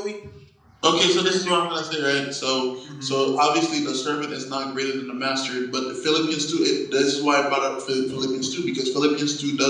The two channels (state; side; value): identical; both; correlation 1.00